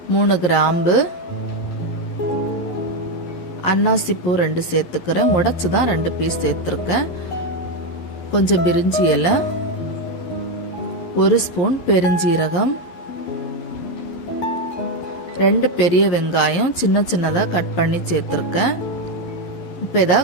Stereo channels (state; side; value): late; right; 12 ms